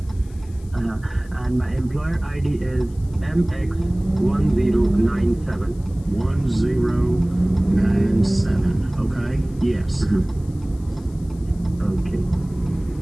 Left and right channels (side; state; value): left; noise; hiss, 28 dB below the sound